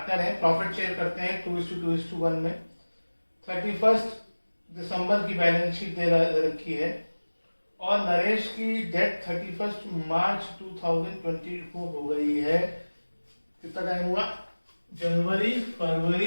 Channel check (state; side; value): inverted; both; correlation -1.00